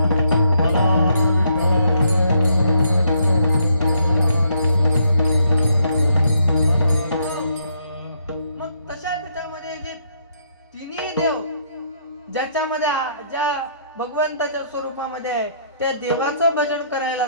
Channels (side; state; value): both; inverted; correlation -0.72